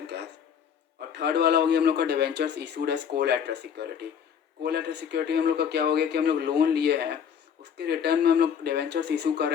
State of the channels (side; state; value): right; quieter; 7.8 dB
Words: cash. और थर्ड वाला हो गया हम लोग का debentures issued as collateral security. Collateral security हम लोग का क्या हो गया कि हम लोग लोन लिए हैं, उसके रिटर्न में हम लोग डिवेंचर्स इशू कर रहे